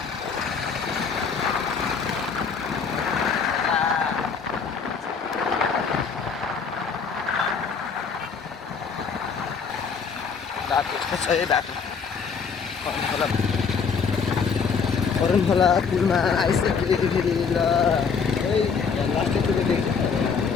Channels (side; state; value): right; quieter; 5.8 dB